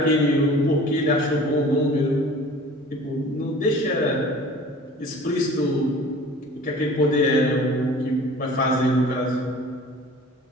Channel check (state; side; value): normal; both; correlation 0.45